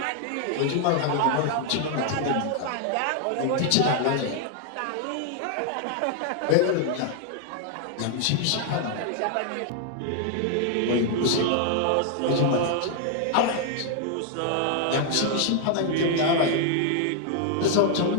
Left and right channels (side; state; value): both; different; correlation 0.00